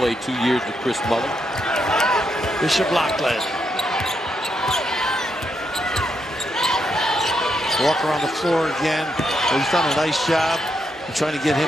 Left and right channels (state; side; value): normal; both; correlation 0.80